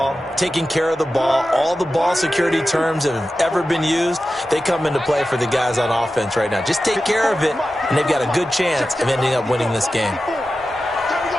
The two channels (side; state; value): both; normal; correlation 0.93